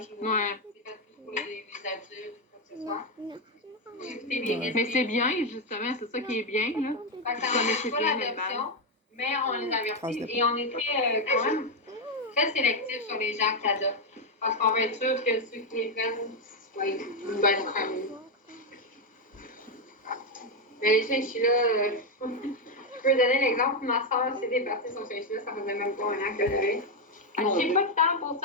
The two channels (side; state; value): both; normal; correlation 0.05